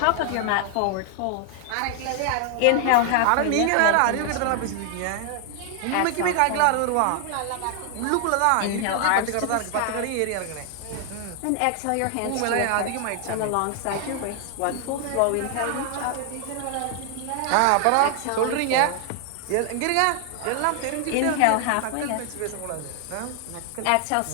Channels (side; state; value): both; different; correlation 0.00